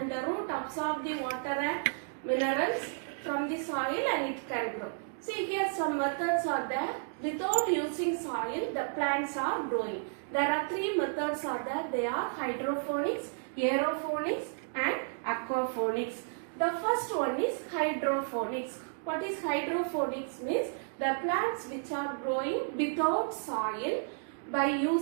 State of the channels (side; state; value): left; silent; digital silence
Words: the root absorb the water and minerals from the soil and it can grow. See, here some methods are there. Without using soil, the plants are growing. There are 3 methods are there. They are hydroponics, aeroponics and aquaponics. The first one is hydroponics. What is hydroponics means? The plants which are growing without soil by